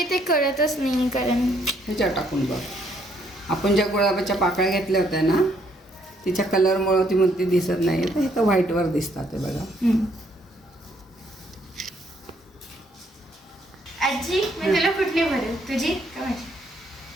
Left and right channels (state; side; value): normal; both; correlation 0.69